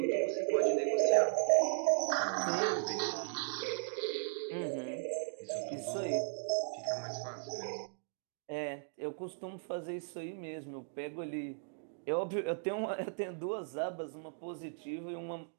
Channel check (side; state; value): left; silent; digital silence